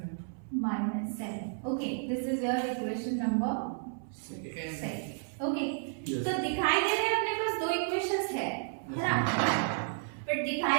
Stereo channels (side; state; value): left; silent; 56 dB below the other